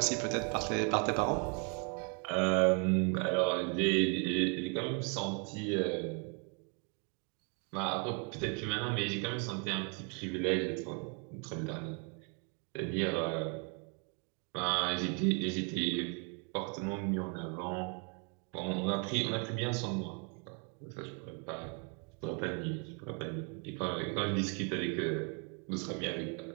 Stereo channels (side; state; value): left; quieter; 37.6 dB